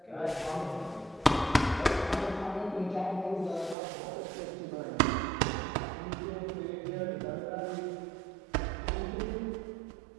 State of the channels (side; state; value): left; drops out; at 3.8 s